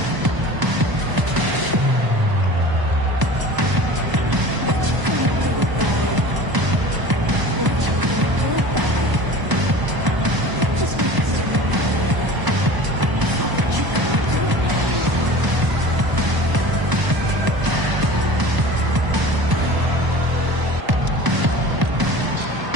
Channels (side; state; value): left; late; 1.0 ms